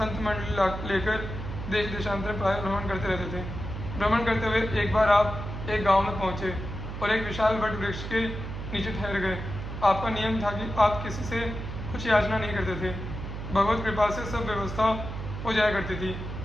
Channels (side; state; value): right; noise; hum, 7 dB below the sound